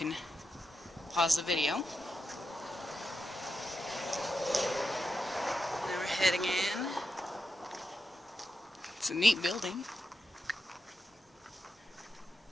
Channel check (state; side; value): normal; both; correlation 0.87